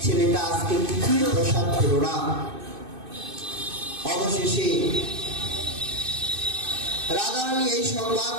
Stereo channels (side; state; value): left; late; 2.6 ms